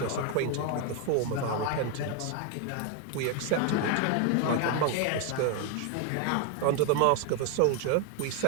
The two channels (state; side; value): different; both; correlation 0.01